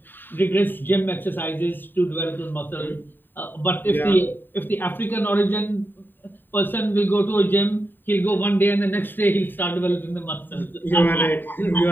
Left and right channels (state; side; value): late; right; 0.093 ms